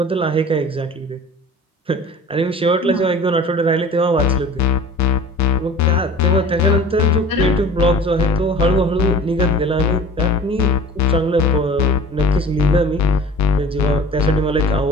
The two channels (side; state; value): both; normal; correlation 0.44